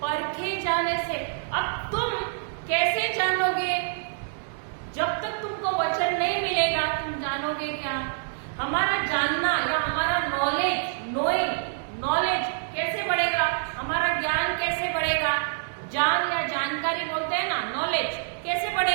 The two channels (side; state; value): left; silent; digital silence